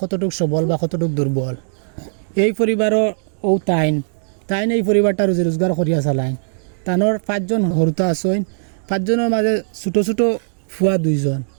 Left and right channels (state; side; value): silent; left; digital silence